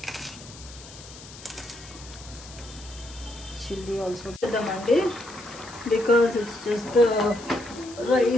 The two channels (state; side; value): noise; left; hiss, 17 dB below the sound